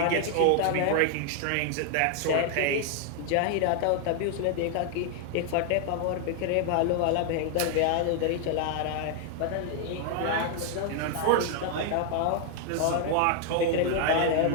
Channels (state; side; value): different; both; correlation 0.00